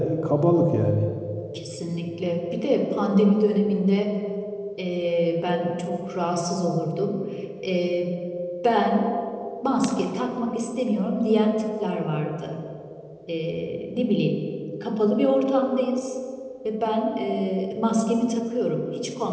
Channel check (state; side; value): identical; both; correlation 1.00